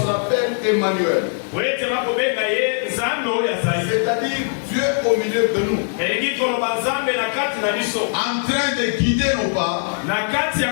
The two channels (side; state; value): right; silent; digital silence